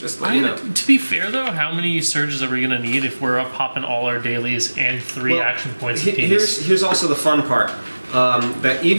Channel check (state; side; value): inverted; both; correlation -1.00